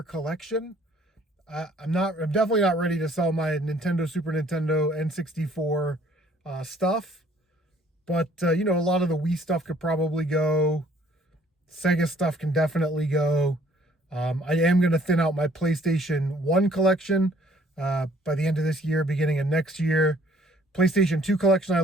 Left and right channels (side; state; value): both; normal; correlation 0.60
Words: collection. I'm definitely not ready to sell my Nintendo, Super Nintendo, N64 stuff. But, a lot of the Wii stuff could probably go. Sega stuff can definitely go. I am going to thin out my PlayStation 1 collection by the end of this year, beginning of next year. PlayStation 2 collection I